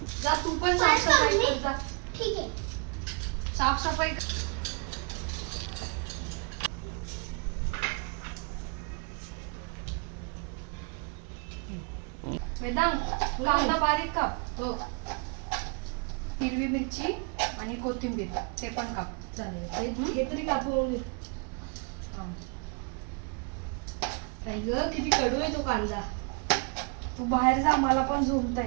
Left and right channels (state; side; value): quieter; left; 35.4 dB